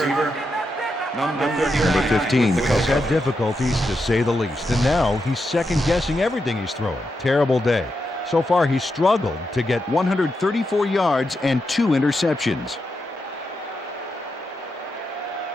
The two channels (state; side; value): normal; both; correlation 0.85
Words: Number 15 has had difficulties, to say the least, and now he's second-guessing everything he's throwing. Terrible day. So far, he's struggled to get 134 yards and 2 interceptions.